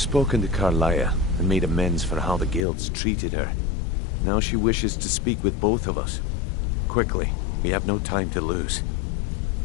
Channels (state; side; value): drops out; right; at 2.7 s